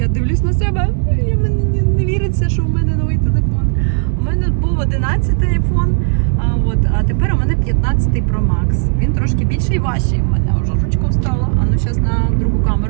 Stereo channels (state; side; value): silent; left; digital silence